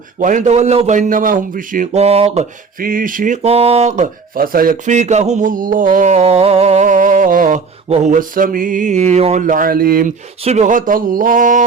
وإن تولوا فإنما هم في شقاق فسيكفيكهم الله وهو السميع العليم صبغة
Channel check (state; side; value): quieter; left; 5.0 dB